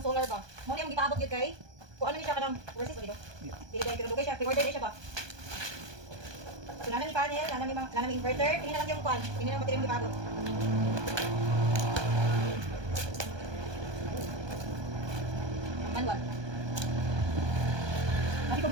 solar ba. Mo ni ang gipaabot gyud kay. Kuan ni siya kanang versus dito. Dili kay pinadugay siya, pre-order din siya ba. So nana ni panel, nana mi inverter, tingnan lang yung kuan, tingnan lang battery ang gipaabot. Manual. Lagi ko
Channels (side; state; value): left; late; 1.2 ms